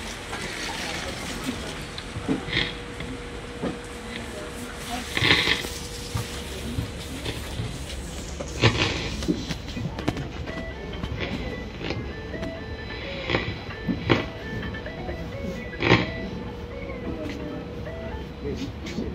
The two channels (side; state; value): both; identical; correlation 1.00